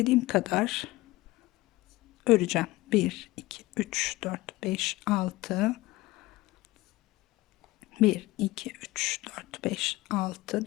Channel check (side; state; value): right; quieter; 19.6 dB